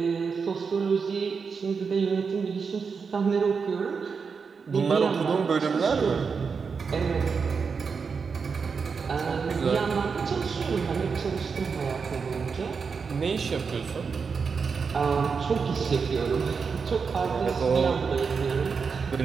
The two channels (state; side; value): quieter; left; 5.5 dB